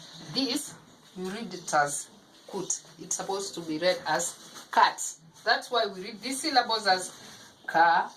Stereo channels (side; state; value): both; identical; correlation 1.00